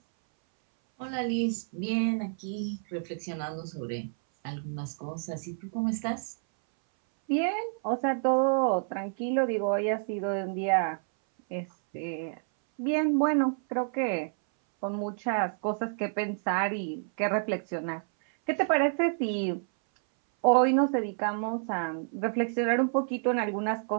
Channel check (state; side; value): silent; left; 58 dB below the other